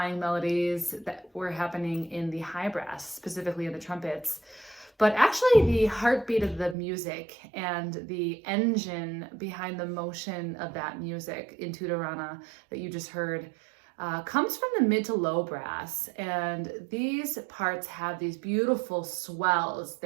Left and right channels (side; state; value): left; drops out; at 6.8 s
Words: melodies that were happening in the high brass, specifically in the trumpets. But actually the heartbeat of the music and the engine behind the motion of that music in Tutorana that you just heard comes from the mid to low brass. And these parts have these beautiful swells.